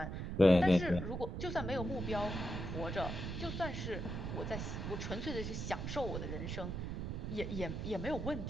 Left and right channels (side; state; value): right; noise; rumble, 4 dB below the sound